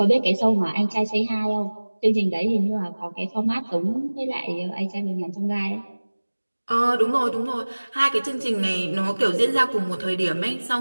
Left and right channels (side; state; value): both; inverted; correlation -1.00